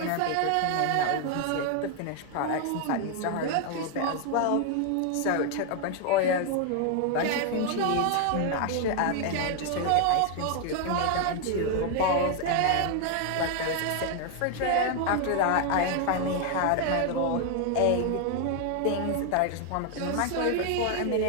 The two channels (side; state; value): both; different; correlation 0.00